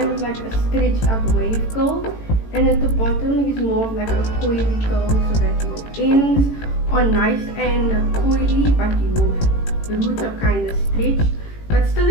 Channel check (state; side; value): late; right; 18 ms